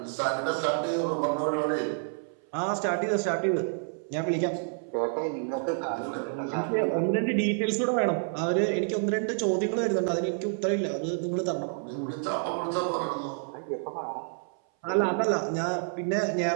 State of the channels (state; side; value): silent; left; 59 dB below the other